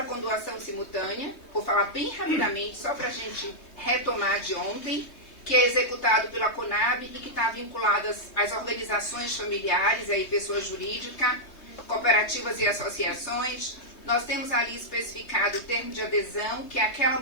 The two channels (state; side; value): late; right; 3.2 ms